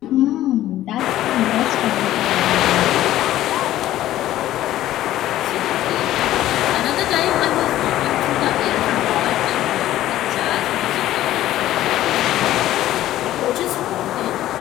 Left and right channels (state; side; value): quieter; right; 13.9 dB